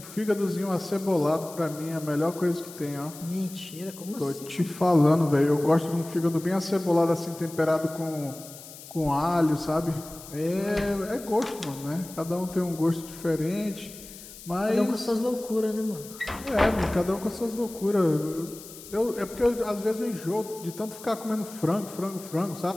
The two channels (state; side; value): noise; left; hiss, 16 dB below the sound